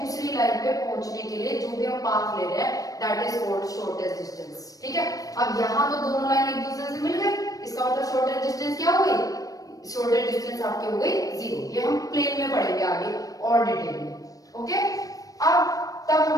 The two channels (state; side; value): late; right; 0.17 ms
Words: लाइन पे पहुंचने के लिए जो भी हम पाथ ले रहे हैं that is called shortest distance. ठीक है, अब यहाँ तो दोनों लाइन एक दूसरे से मिल गई, इसका मतलब शॉर्टेस्ट डिस्टेंस क्या हो गई, शॉर्टेस्ट डिस्टेंस आपकी हो गई जीरो. ये हम प्लेन में पढ़ेंगे आगे और डिटेल में. ओके, अब तब